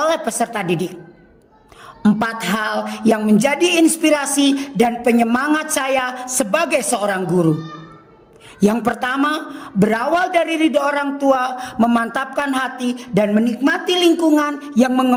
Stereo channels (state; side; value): identical; both; correlation 1.00